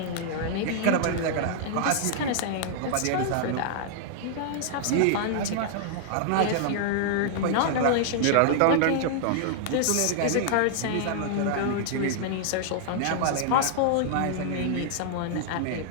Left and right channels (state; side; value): different; both; correlation -0.01